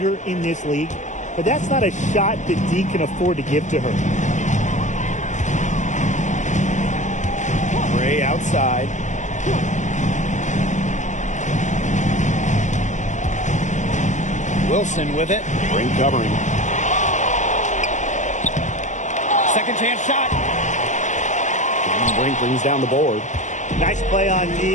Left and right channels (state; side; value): late; right; 0.35 ms